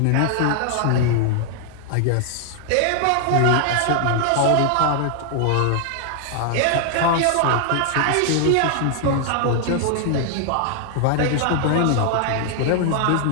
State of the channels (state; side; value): different; both; correlation 0.00